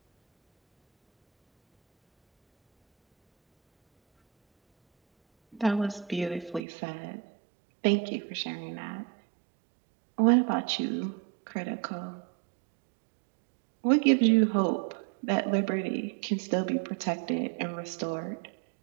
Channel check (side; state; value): left; drops out; at 6.6 s